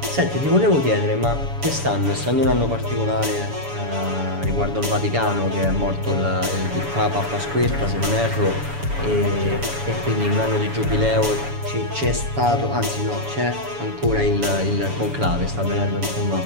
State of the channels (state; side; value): late; left; 7.0 ms